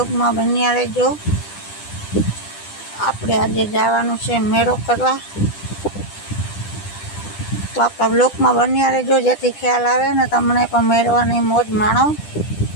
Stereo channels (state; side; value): late; right; 10 ms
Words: में बन्या रहेजो। आपणे आजे जवानुं छे मेळो करवा। तो आपड़ा ब्लॉग में बन्या रहेजो जेथी ख्याल आवे ने तमने पण मेळवानी मौज माणो।